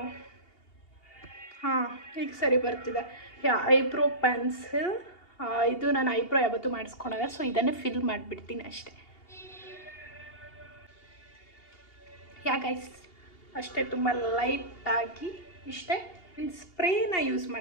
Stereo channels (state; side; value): late; right; 2.8 ms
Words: ಹಾಂ, ಈಗ ಸರಿ ಬರ್ತಿದೆ. ಯಾ ಐಬ್ರೋ ಪೆನ್ಸಿಲ್. ಇದು ನಾನು ಐಬ್ರೋ ಯಾವತ್ತೂ ಮಾಡಿಸ್ಕೊಳಲ್ಲ, ಸೊ ಇದನ್ನೇ ಫಿಲ್ ಮಾಡಿಬಿಡ್ತೀನಿ ಅಷ್ಟೇ. ಯಾ ಗೈಸ್ ಅಷ್ಟೇ, ತುಂಬ ಲೈಟಾಗಿ ಇಷ್ಟೇ. ಇನ್ನು ಸ್ಪ್ರೇನ ಯೂಸ್